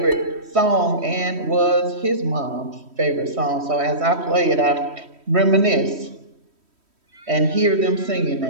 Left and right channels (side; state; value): left; late; 3.1 ms